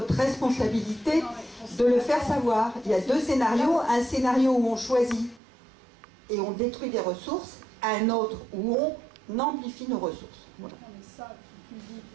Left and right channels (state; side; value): drops out; left; at 5.4 s